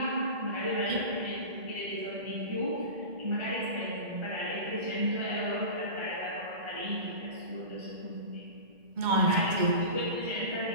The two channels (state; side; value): late; left; 2.2 ms